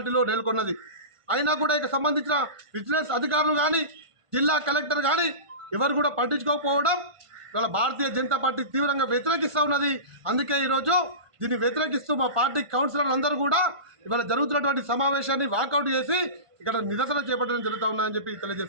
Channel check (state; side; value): late; left; 1.5 ms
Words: నెలకొన్నది. అయినా కూడా ఇక సంబంధించిన విజిలెన్స్ అధికారులు కానీ జిల్లా కలెక్టర్ కానీ ఎవరు కూడా పట్టించుకోకపోవడం ఇవాళ భారతీయ జనతా పార్టీ తీవ్రంగా వ్యతిరేకిస్తూ ఉన్నది. అందుకే ఈరోజు దీన్ని వ్యతిరేకిస్తూ మా పార్టీ కౌన్సిలర్లు అందరూ కూడా ఇవాళ జరుగుతున్నటువంటి సమావేశాన్ని వాకౌట్ చేసి ఇక్కడ నిరసన చేపట్టడం జరుగుతూ ఉన్నదని చెప్పి